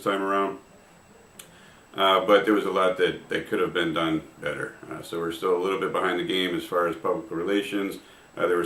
time around, but there was a lot that could have been done better. So we're still a little bit behind the game as far as public relations. There were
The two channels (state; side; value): identical; both; correlation 1.00